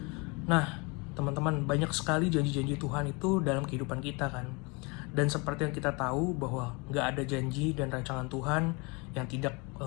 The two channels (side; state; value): right; quieter; 29.1 dB